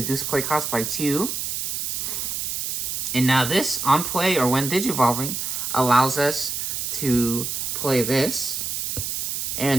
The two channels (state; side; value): noise; right; hiss, 2 dB below the sound